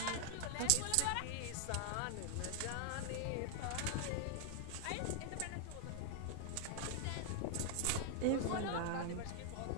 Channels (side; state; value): both; different; correlation 0.00